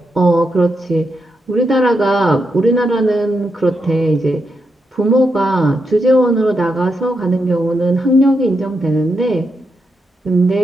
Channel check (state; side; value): normal; both; correlation 0.84